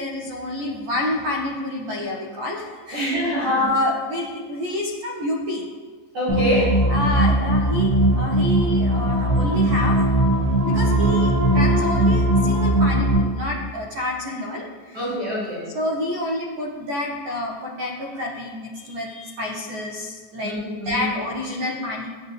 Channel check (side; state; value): left; late; 14 ms